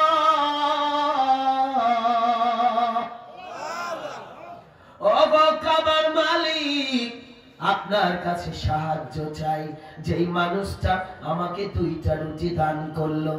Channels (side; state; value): both; identical; correlation 1.00